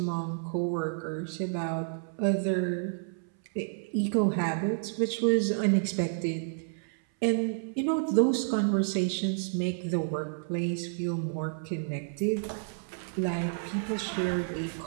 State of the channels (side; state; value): left; silent; 58 dB below the other